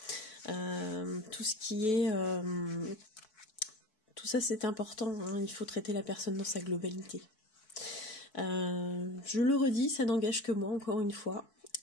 Tout ce qui est... tout ça, c'est important. Il faut traiter la personne dans sa globalité. Je le redis, ça n'engage que moi, encore une fois.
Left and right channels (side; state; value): right; late; 4.6 ms